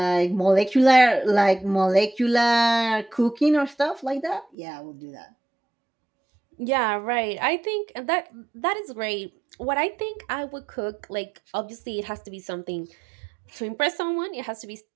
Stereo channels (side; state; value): left; drops out; at 4.5 s